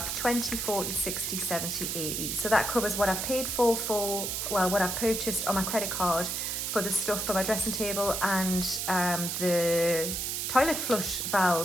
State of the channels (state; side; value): noise; right; hiss, 2 dB below the sound